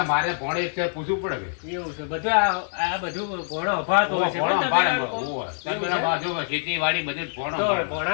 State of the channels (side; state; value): right; silent; 59 dB below the other